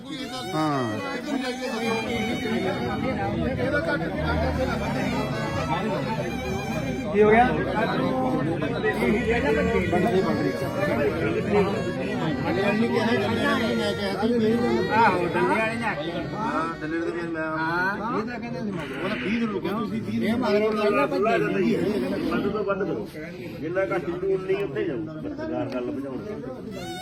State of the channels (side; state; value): both; identical; correlation 1.00